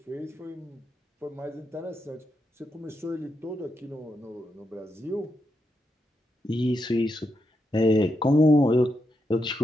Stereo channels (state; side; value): normal; both; correlation 0.84